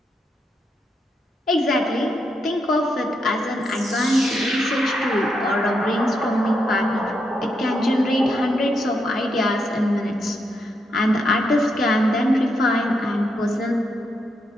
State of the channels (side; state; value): both; normal; correlation 0.81